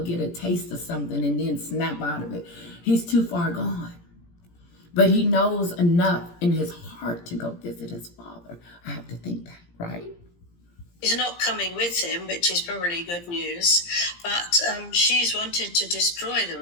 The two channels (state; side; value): late; right; 17 ms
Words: get a taste of something and then snap out of it. He's too far gone. But he knows enough in his heart to go visit his father. I have to think that, right? He's not coming with him, which is probably good news. But she's wanted to destroy the